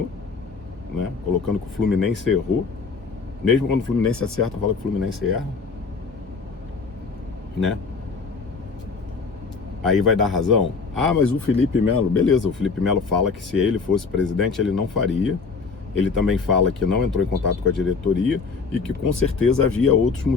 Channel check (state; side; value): quieter; right; 4.8 dB